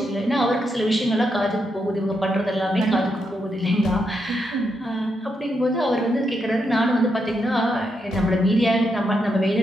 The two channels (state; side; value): normal; both; correlation 0.82